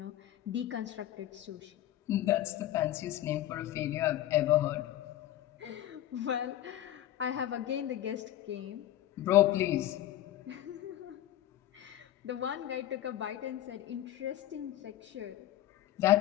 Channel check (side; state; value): right; quieter; 13.2 dB